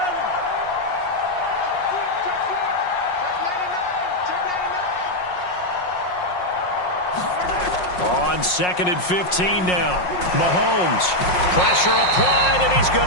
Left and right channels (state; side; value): late; right; 5.5 ms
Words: On 2nd and 15 now. Mahomes. Pressure applied, and he's going